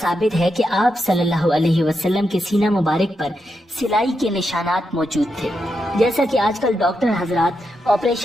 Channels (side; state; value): both; normal; correlation 0.84